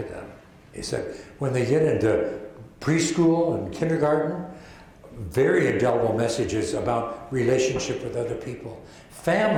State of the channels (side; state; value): both; identical; correlation 1.00